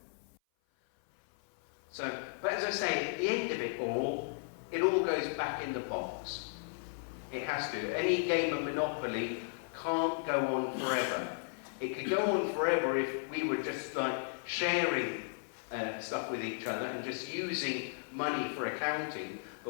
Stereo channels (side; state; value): right; silent; 54 dB below the other